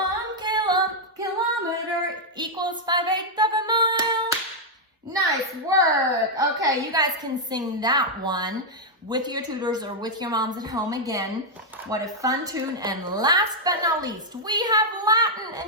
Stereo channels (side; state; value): both; normal; correlation -0.03